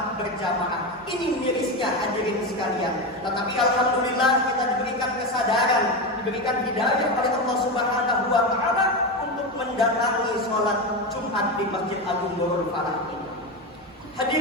berjamaah. Ini mirisnya hadirin sekalian. Tetapi alhamdulillah kita diberikan kesadaran, diberikan hidayah oleh Allah Subhanahu wa Ta'ala untuk mendatangi sholat Jumat Jumat di Masjid Agung Nurul Falah ini.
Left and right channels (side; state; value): both; normal; correlation 0.16